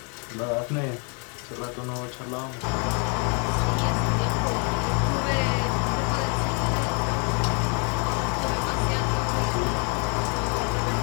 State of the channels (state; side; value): quieter; right; 36.8 dB